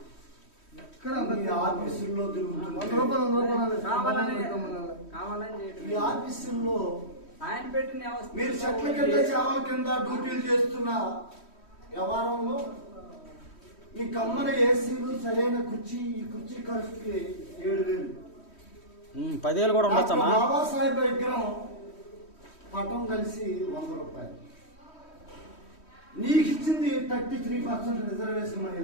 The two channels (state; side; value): late; right; 3.1 ms